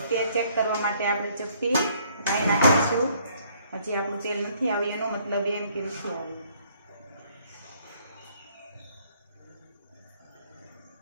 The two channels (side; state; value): both; inverted; correlation -0.63